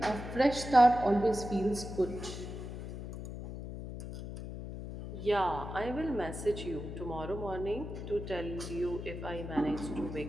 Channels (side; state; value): left; noise; hum, 8 dB below the sound